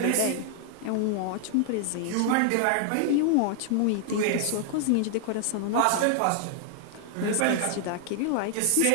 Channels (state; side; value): different; both; correlation 0.00